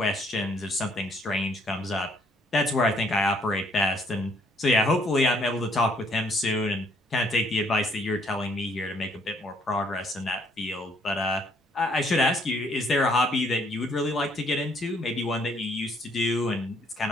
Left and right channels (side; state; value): both; normal; correlation 0.66